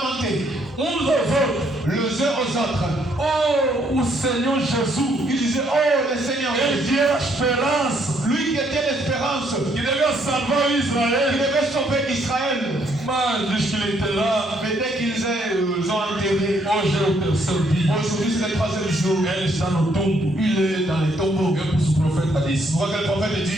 uns aos outros. les uns aux autres. Oh, o Senhor Jesus, Ils disaient, oh le Seigneur ele Jésus, tinha a esperança lui qui était l'espérance, que devia salvar qui Israel, devait sauver Israël. mas diz que ele était là. Mais dès qu'ils ont enterré, Hoje é o terceiro dia. aujourd'hui c'est le troisième jour, Ele está no tombo. il est dans les tombeaux. Eu pus o profeta disse: Je vois que le prophète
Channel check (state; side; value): normal; both; correlation 0.70